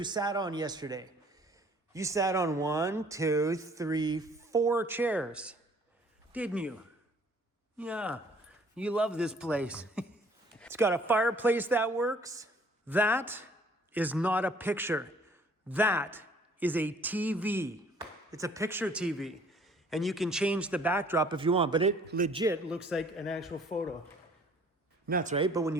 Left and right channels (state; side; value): normal; both; correlation 0.57